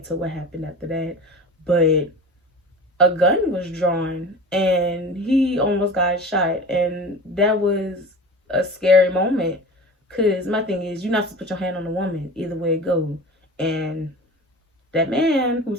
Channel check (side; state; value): both; normal; correlation 0.35